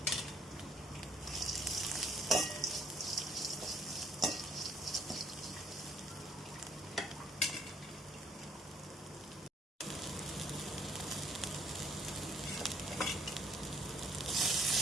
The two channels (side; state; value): both; normal; correlation 0.64